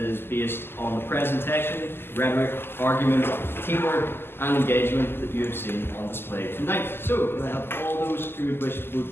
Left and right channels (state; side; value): late; right; 0.11 ms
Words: based on the presentation, rhetoric, argument, teamwork, and engagement that you have seen on display tonight. So, can I have all those who would wish to